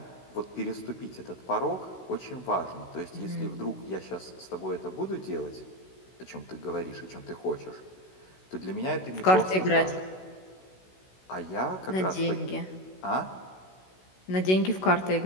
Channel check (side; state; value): right; late; 16 ms